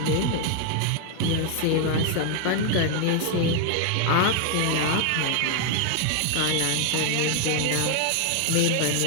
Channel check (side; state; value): both; different; correlation 0.00